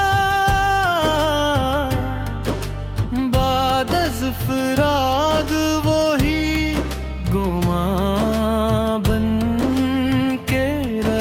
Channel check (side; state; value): both; identical; correlation 1.00